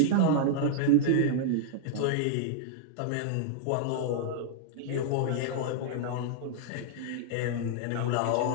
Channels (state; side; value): different; both; correlation -0.01